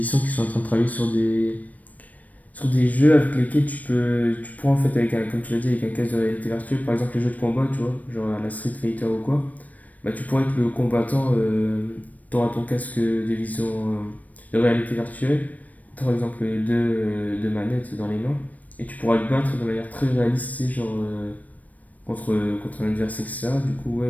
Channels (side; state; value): right; late; 0.073 ms